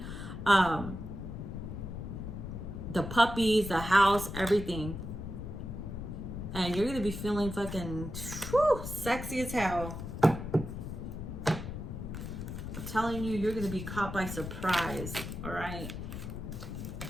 The puppies, the house, everything. And you're going to be feeling fucking sexy as hell. I'm telling you, you're going to be caught by surprise, all right?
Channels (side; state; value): left; noise; rumble, 7 dB below the sound